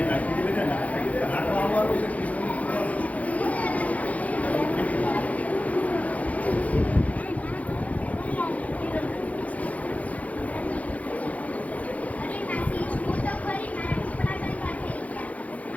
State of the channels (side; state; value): right; late; 0.069 ms